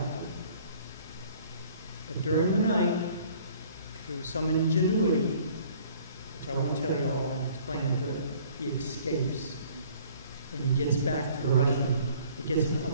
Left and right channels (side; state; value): both; inverted; correlation -0.55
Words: But during the night, through some ingenuity, which I won't tell you all, I'll explain it good, he escapes. And he gets back to the Russian, he gets